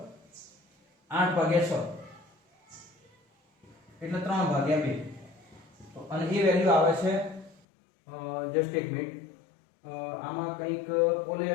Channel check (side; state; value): right; drops out; at 7.6 s